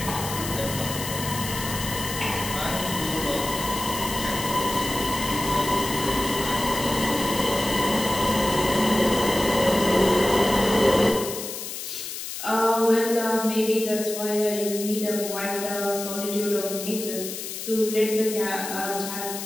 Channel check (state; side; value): noise; left; hiss, 7 dB below the sound